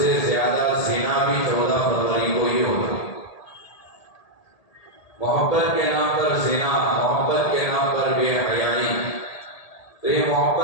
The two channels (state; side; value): late; right; 1.8 ms